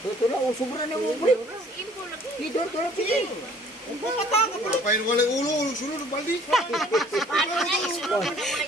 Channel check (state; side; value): normal; both; correlation 0.55